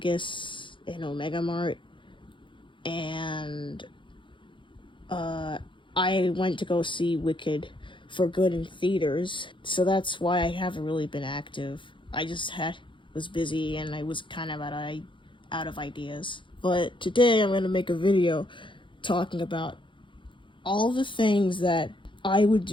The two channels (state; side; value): late; right; 0.24 ms